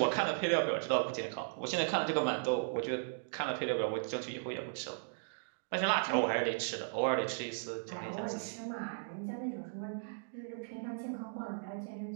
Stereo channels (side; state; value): left; silent; digital silence